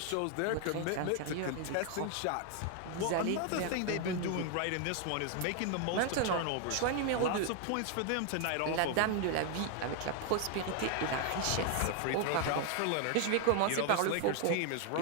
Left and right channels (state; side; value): different; both; correlation 0.00